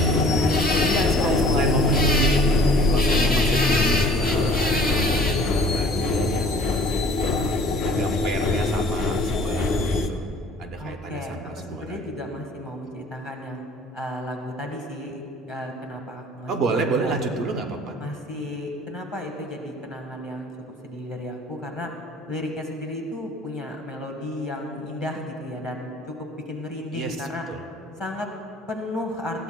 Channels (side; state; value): both; normal; correlation 0.52